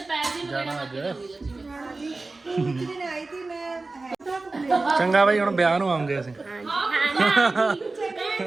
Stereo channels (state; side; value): quieter; left; 3.4 dB